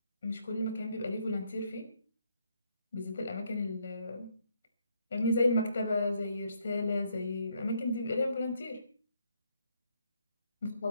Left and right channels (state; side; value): inverted; both; correlation -0.72